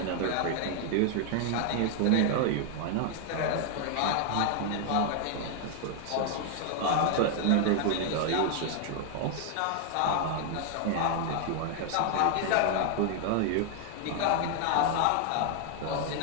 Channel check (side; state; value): both; different; correlation 0.00